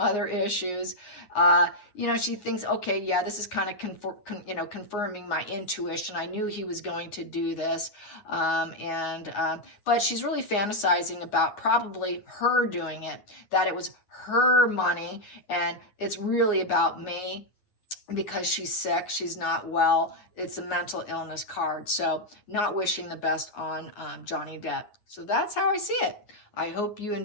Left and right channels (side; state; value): right; late; 9.6 ms